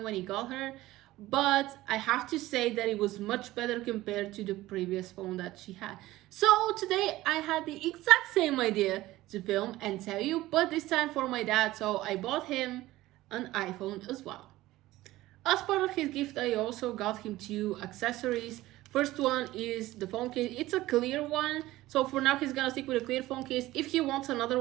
when he got her, but I have to say that it was much better compared to the previous phone that she had. So today I had the exact same idea to film and tell you, but this time for my dad, so I bought him an iPhone as well. As part of his gift, I also got him two accessories. First one is the phone case. It's a clear one, so for now he's gonna stick with a clear phone case. If he wants another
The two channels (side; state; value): left; quieter; 17.0 dB